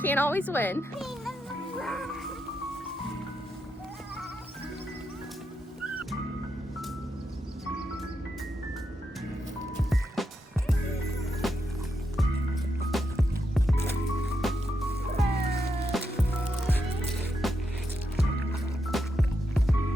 can't always win.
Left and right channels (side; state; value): both; normal; correlation 0.84